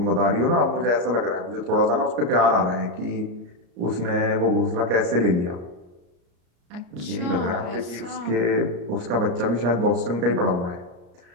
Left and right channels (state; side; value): late; left; 34 ms